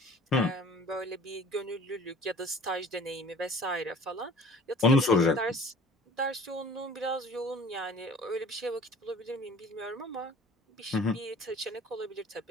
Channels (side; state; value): both; normal; correlation 0.48